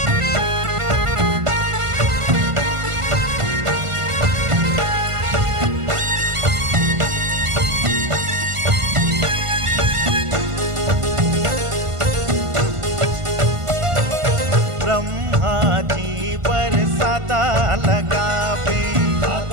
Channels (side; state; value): left; late; 1.5 ms